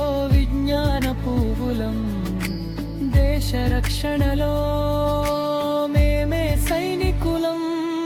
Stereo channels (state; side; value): identical; both; correlation 1.00